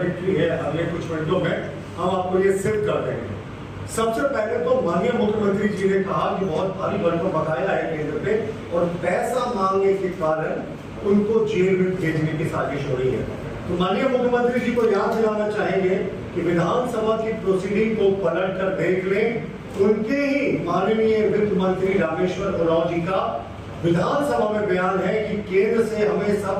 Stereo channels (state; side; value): identical; both; correlation 1.00